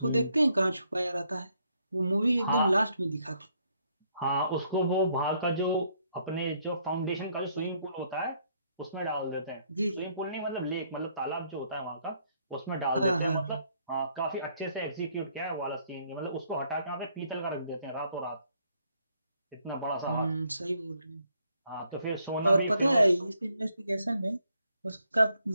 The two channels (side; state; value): both; inverted; correlation -0.71